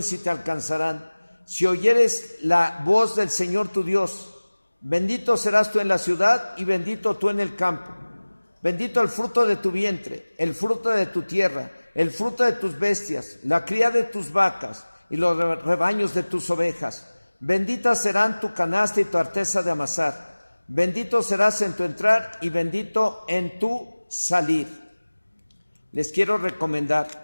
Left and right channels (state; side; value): inverted; both; correlation -1.00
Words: y te alcanzarán, si oyeres la voz del Señor tu Dios. Bendito serás tú en la ciudad y bendito tú en el campo. Bendito el fruto de tu vientre, el fruto de tu tierra, el fruto de tus bestias, la cría de tus vacas y los rebaños de tus ovejas. Benditas serán tu canasta y tu arteza de amasar. Bendito serás en tu entrar y bendito en tu salir. Les quiero recomendar